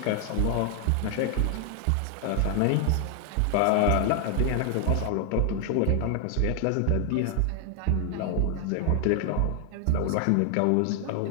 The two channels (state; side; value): different; both; correlation 0.00